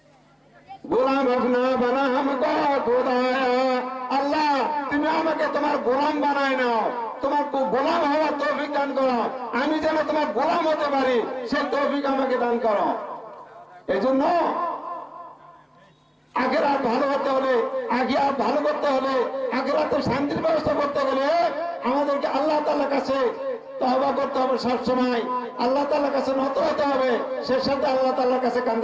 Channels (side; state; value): both; identical; correlation 1.00